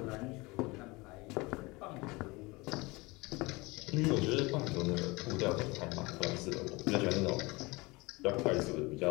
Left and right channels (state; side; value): quieter; right; 24.0 dB